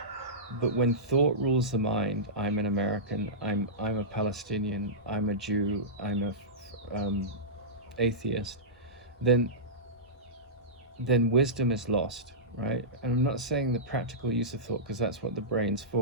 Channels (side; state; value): both; normal; correlation -0.17